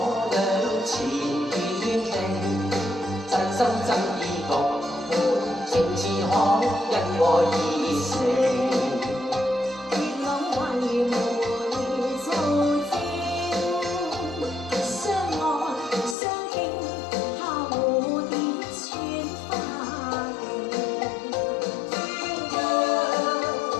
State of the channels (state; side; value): drops out; right; at 16.2 s